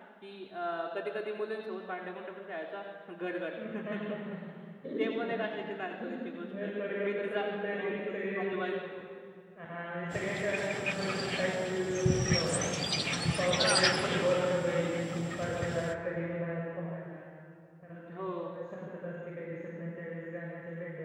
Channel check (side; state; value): both; identical; correlation 1.00